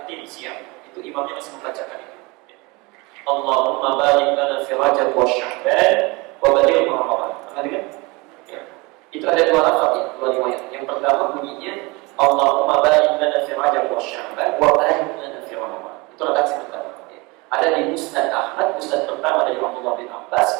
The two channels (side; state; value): left; quieter; 25.7 dB